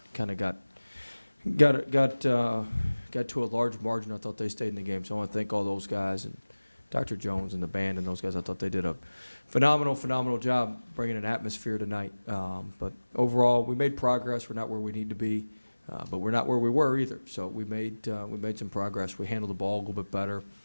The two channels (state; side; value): inverted; both; correlation -1.00